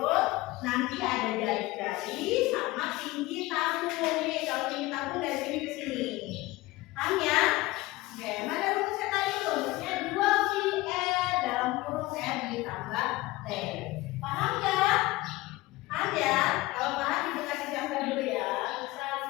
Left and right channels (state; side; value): quieter; right; 19.5 dB